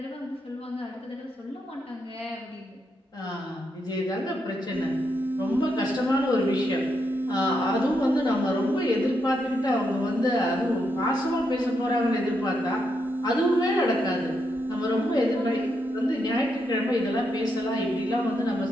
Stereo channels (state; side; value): normal; both; correlation 0.81